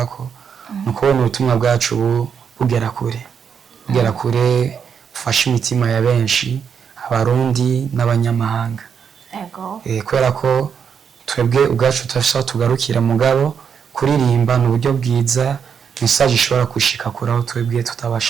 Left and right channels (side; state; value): left; quieter; 7.1 dB